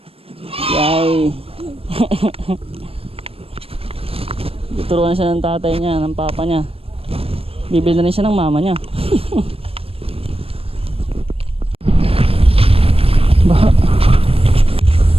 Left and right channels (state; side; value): late; left; 0.28 ms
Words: yay. Turuan siya ng tatay niya, ng papa niya. Bibili na rin siya ng mama niya. Baha.